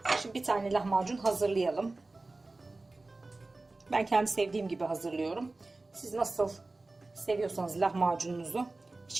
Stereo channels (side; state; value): left; quieter; 3.2 dB